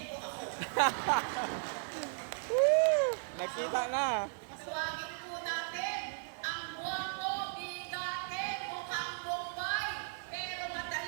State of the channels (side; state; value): left; silent; digital silence